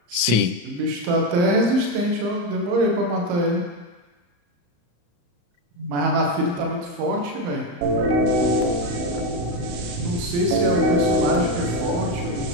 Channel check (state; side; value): late; left; 34 ms